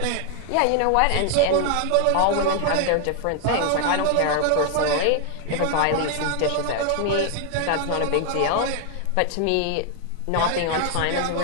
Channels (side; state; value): both; different; correlation 0.00